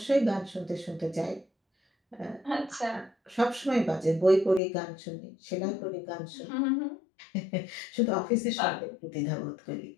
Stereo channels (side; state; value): right; drops out; at 4.6 s